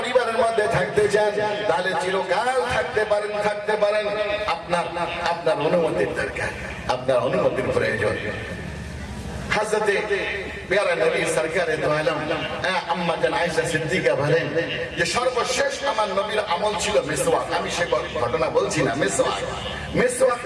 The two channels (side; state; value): both; identical; correlation 1.00